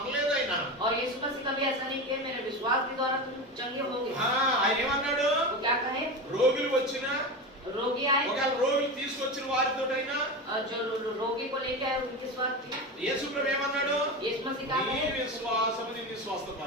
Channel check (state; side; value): normal; both; correlation 0.23